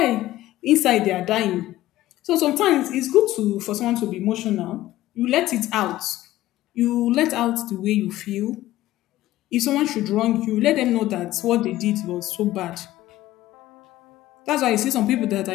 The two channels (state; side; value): quieter; right; 15.3 dB